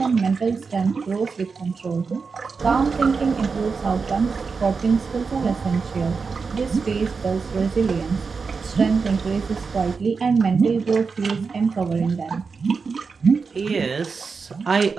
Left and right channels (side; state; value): left; quieter; 5.0 dB